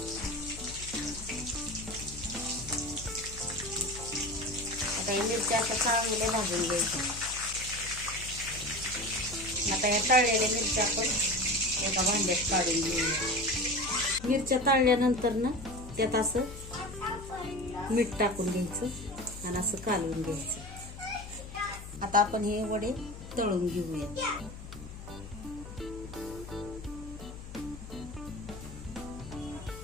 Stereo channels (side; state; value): left; noise; hum, 12 dB below the sound